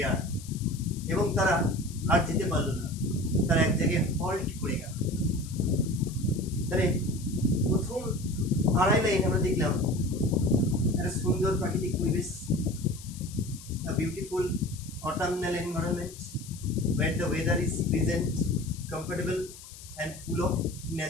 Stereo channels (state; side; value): noise; left; hiss, 17 dB below the sound